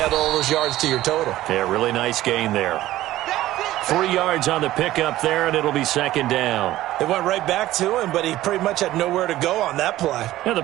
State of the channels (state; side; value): quieter; left; 15.2 dB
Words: all those yards to your total. Yeah, really nice gain there. 3 yards on the pickup there, and it'll be second down. It went right back to him, but he pretty much had nowhere to go on that play. Yeah, the